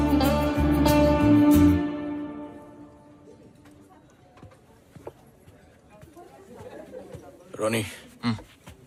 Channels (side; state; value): both; identical; correlation 1.00